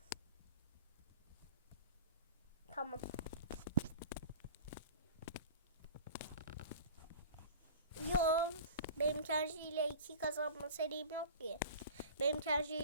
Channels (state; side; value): inverted; both; correlation -0.38